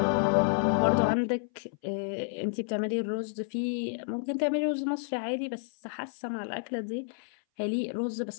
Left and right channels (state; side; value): silent; right; 58 dB below the other